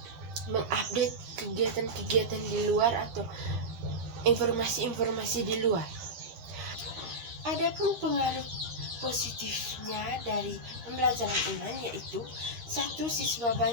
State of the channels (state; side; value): late; left; 13 ms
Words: mengupdate kegiatan-kegiatan di luar atau informasi-informasi di luar. Adapun pengaruh positifnya dari pembelajaran online, yaitu satu, siswa